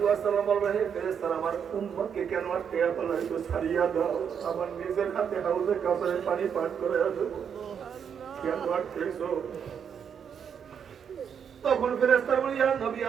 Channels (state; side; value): quieter; left; 7.5 dB